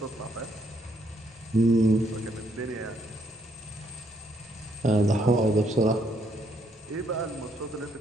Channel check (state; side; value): normal; both; correlation 0.72